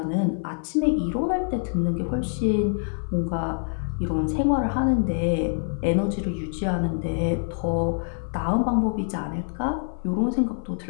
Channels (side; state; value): right; silent; 57 dB below the other